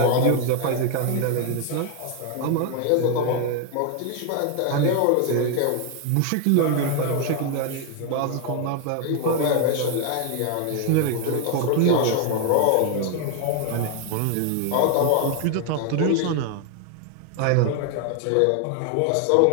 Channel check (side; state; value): both; different; correlation 0.01